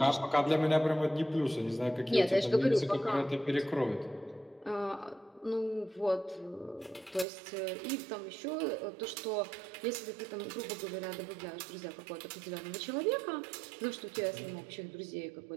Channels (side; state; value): left; drops out; at 7.2 s